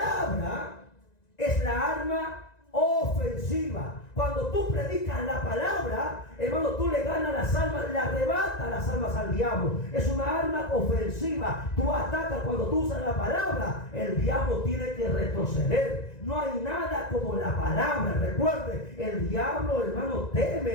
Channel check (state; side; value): late; right; 1.9 ms